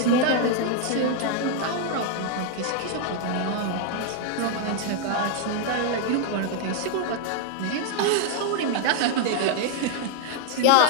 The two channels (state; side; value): different; both; correlation 0.00